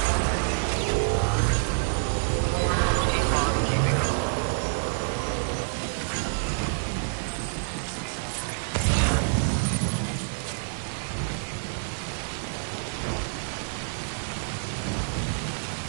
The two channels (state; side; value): silent; left; digital silence